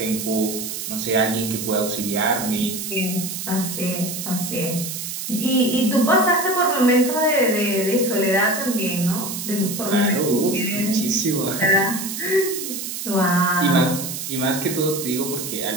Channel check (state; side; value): noise; right; hiss, 6 dB below the sound